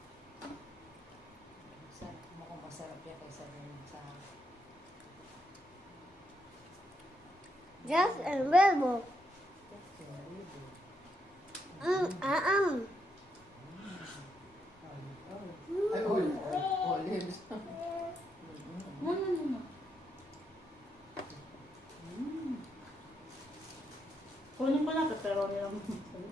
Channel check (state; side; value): normal; both; correlation 0.79